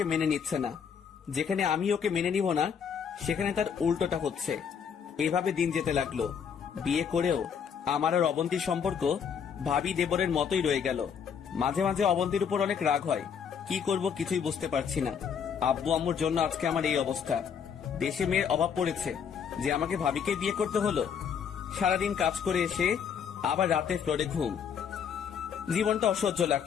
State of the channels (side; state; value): right; quieter; 7.2 dB